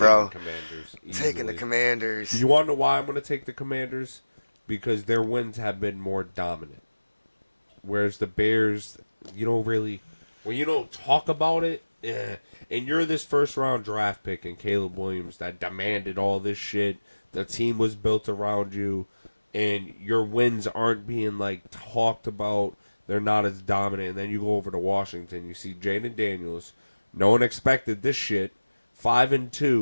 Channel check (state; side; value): inverted; both; correlation -1.00